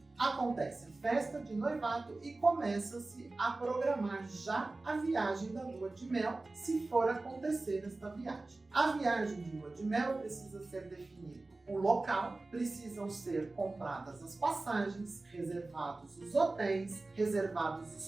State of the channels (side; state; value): left; quieter; 3.2 dB